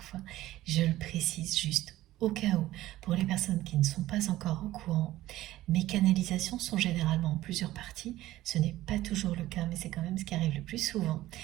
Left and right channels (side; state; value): left; quieter; 15.5 dB